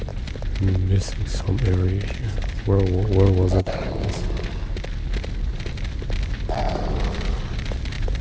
I'm missing some area here. Where was it?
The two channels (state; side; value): identical; both; correlation 1.00